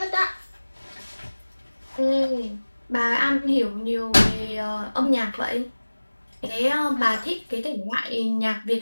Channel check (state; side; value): inverted; both; correlation -1.00